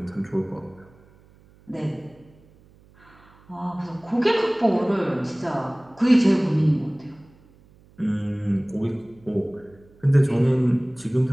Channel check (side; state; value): right; noise; hum, 28 dB below the sound